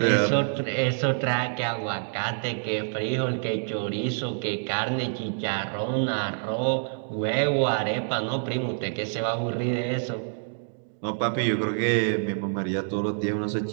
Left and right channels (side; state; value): left; silent; 60 dB below the other